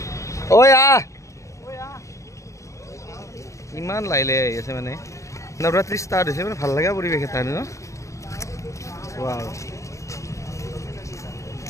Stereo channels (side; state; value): right; late; 0.15 ms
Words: ঐ আহ ইমান লাইলে আহি আছে মানে নৱৰাত্ৰি ষ্টাৰ্ট হৈছে মানে ভাল লগা পৰিৱেশ এটা ন ৱাও